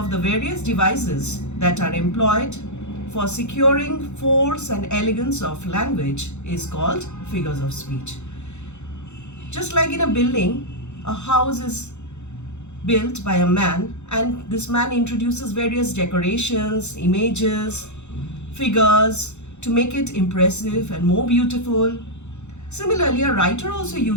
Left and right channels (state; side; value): late; right; 0.83 ms